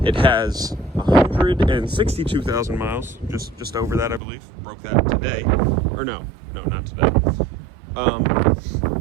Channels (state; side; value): drops out; left; at 4.2 s